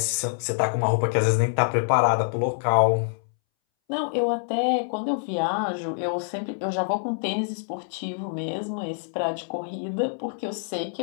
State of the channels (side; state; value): right; silent; 61 dB below the other